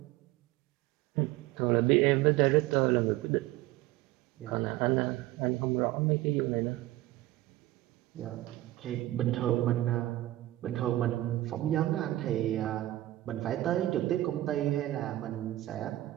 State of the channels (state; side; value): quieter; left; 16.2 dB